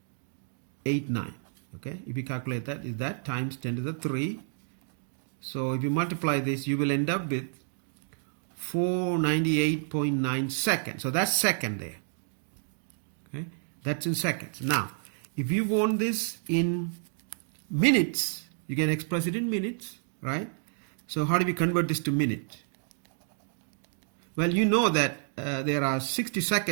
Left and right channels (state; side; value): silent; left; digital silence